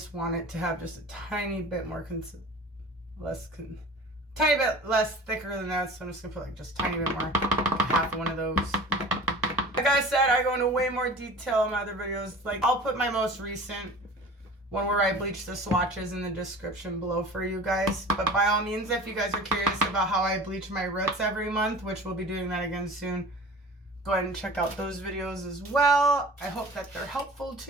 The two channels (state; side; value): normal; both; correlation 0.40